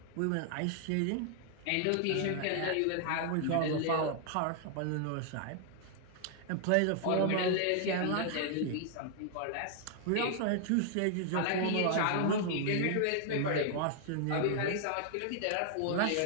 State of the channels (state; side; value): different; both; correlation 0.00